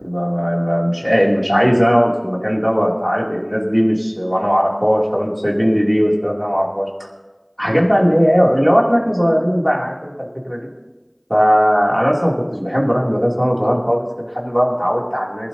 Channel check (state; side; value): identical; both; correlation 1.00